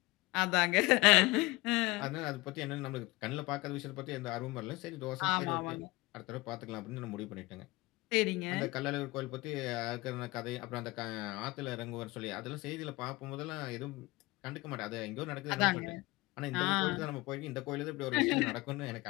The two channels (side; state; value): right; quieter; 21.7 dB